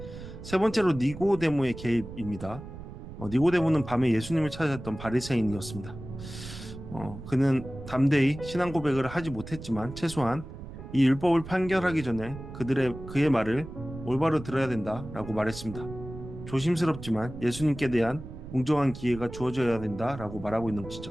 세 번째로 니고데모의 개입입니다. 니고데모는 밤에 예수님을 찾았던 바리새인이었습니다. 그는 담대히 신앙 고백을 하지 못했지만 최소한 이 율법을 판결하기 전에 그의 말을 올바로 들어야 된다라고 말했습니다. 조심스럽지만 예수님께 대한 공정한 기회가 주어져야 된다라고 말하고 있는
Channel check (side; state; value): right; noise; rumble, 12 dB below the sound